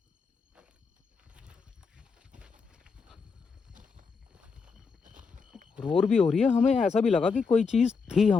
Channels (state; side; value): quieter; right; 5.1 dB